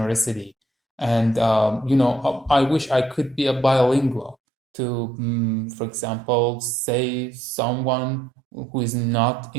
and I wish I could be a bilingual to, for example, say someone who is not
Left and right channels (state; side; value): drops out; left; at 4.4 s